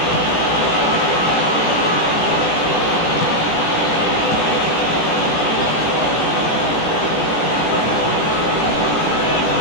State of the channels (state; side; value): late; right; 18 ms